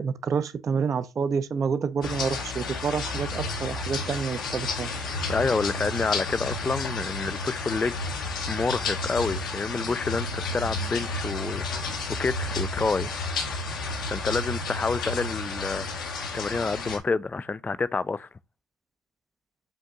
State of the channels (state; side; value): normal; both; correlation 0.68